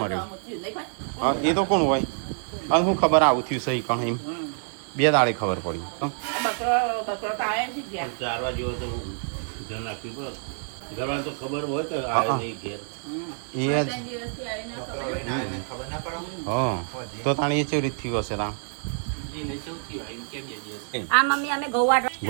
મર્યું હા એ તો કોણ હોય અને હું ખબર આવું થયું સહી કણ એમ 2 દાડે ખબર પડી તો તાણે એ કેવી રીત થયું હશે તા આ મમ્મી અમે ગોવા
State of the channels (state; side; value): silent; left; 60 dB below the other